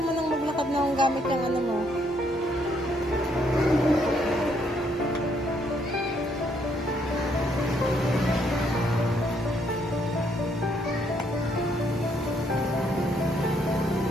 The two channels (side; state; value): both; normal; correlation 0.71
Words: mo nang maglakad na ang gamit yung ano mo.